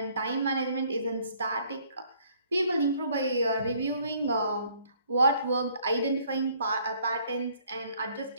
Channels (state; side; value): inverted; both; correlation -0.62